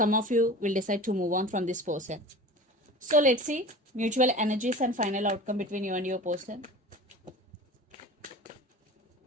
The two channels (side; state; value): both; normal; correlation 0.37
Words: of you will decide to move on from this person. So let's see mutual energies and final outcome between you and your person.